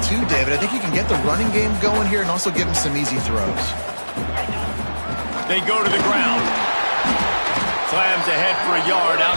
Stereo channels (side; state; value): both; inverted; correlation -1.00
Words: too, David. I think you can get the running game going here and also give him some easy throws. They go to the ground. Slams ahead for a yard